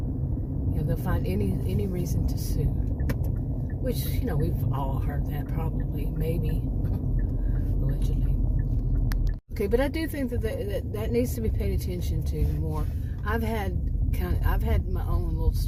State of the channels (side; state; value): both; identical; correlation 1.00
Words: They'll find any reason to sue. Which, we've all heard that, probably, maybe, allegedly. Okay, but I do think that needs to be paid attention to more. I've had my own little